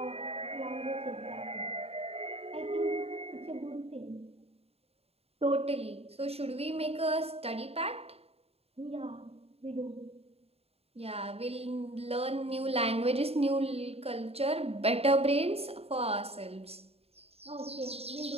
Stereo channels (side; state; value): left; late; 0.29 ms